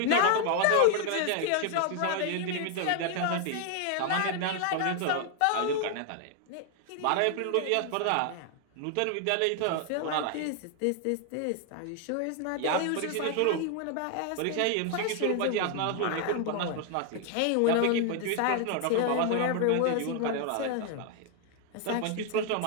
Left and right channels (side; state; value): both; different; correlation 0.00